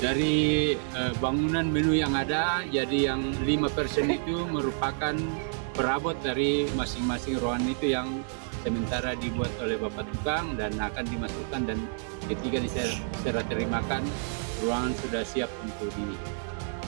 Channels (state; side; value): silent; left; 59 dB below the other